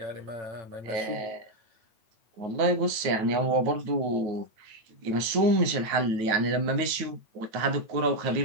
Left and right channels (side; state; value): left; late; 9.3 ms